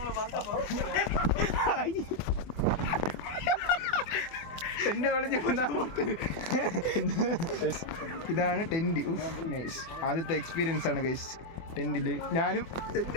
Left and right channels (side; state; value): right; late; 24 ms